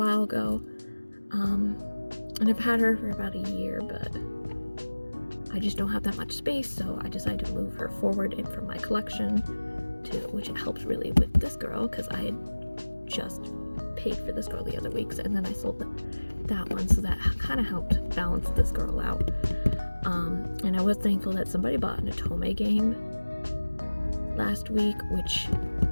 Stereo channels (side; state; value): both; inverted; correlation -1.00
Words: ago. And I've had her for about a year, but I just don't have that much space, so I decided to move her forward in from my collection, which it helps really with this girl, because I had just paid for this girl the other weeks, and then I sold that one, so that kind of helped balance this girl out. And I was thankful that somebody bought an Otome game last week, which